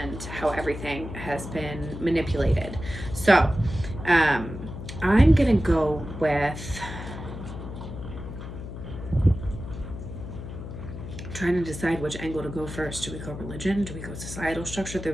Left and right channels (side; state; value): left; noise; hum, 9 dB below the sound